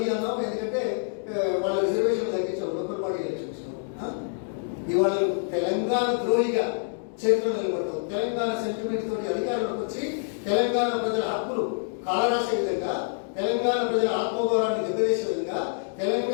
అన్నాం, ఎందుకంటే వాళ్ళ రిజర్వేషన్ తగ్గించాం లోకల్ బాడీ ఎలక్షన్స్. ఇవాళ తెలంగాణ ద్రోహిగా చరిత్రలో నిలబడ్డావు. తెలంగాణ సెంటిమెంట్ తోటి అధికారంలోకి వచ్చి తెలంగాణ ప్రజల హక్కులు కాలరాసే విధంగా, తెలంగాణ ప్రజల ఆత్మగౌరవాన్ని దెబ్బతీసే విధంగా,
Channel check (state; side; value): silent; right; digital silence